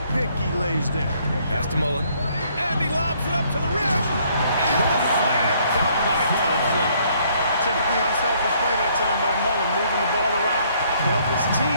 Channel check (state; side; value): inverted; both; correlation -0.65